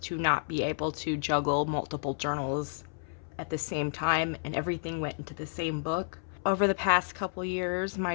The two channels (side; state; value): right; silent; 57 dB below the other